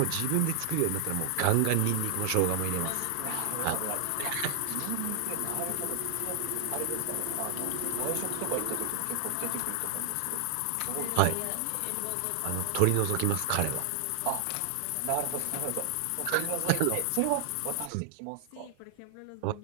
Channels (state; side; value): different; both; correlation 0.00